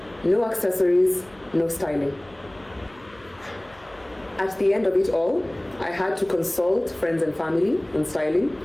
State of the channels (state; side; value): noise; left; hum, 27 dB below the sound